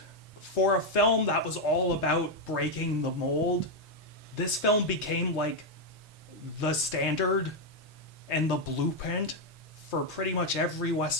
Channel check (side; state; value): both; normal; correlation 0.02